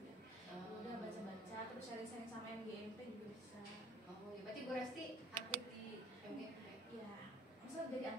ya. Udah baca-baca, terus sharing-sharing sama MGMP juga bisa. Oh, ya berarti Bu Resti aktif di MGMP? Iya, maksudnya jadi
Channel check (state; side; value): normal; both; correlation 0.53